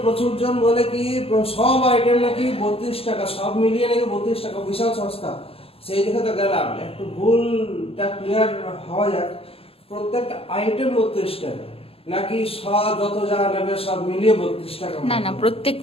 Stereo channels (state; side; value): late; right; 0.28 ms